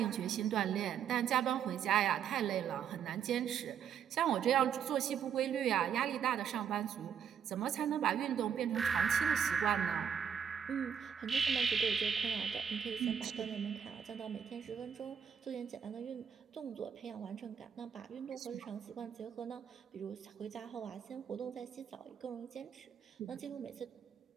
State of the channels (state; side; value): quieter; left; 7.9 dB